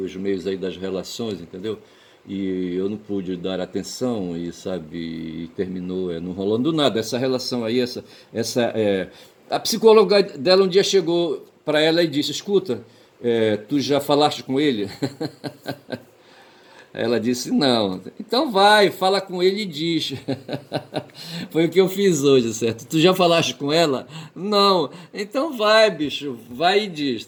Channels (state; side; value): identical; both; correlation 1.00